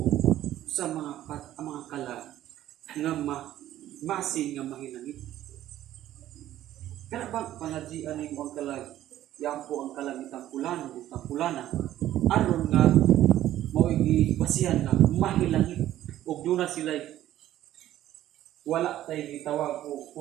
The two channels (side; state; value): left; quieter; 13.1 dB